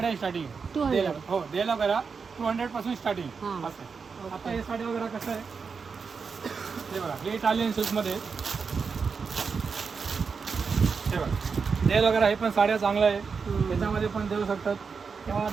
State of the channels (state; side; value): quieter; left; 5.4 dB